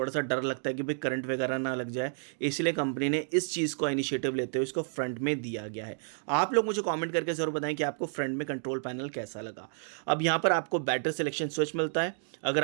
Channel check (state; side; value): silent; left; digital silence